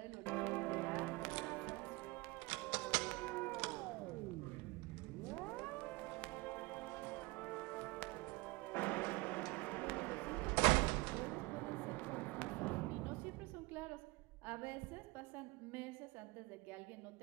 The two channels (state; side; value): quieter; left; 24.4 dB